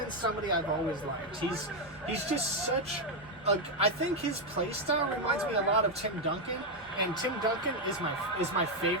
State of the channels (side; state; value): both; normal; correlation 0.04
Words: somebody I've always liked. He's just such a... I think his play style reminds me a lot of Tim Duncan. And Tim Duncan is my